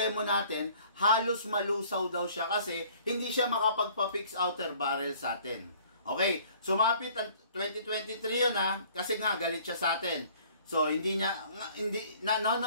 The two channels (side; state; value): both; inverted; correlation -0.54